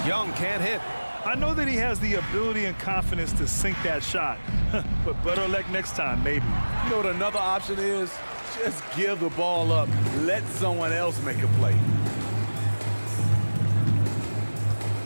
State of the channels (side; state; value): both; inverted; correlation -1.00